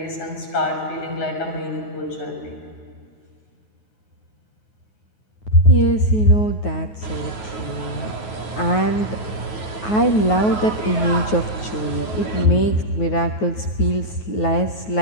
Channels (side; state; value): right; late; 9.3 ms